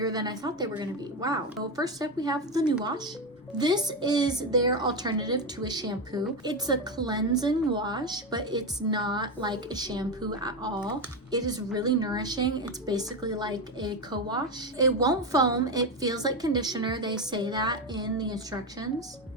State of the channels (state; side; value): normal; both; correlation 0.13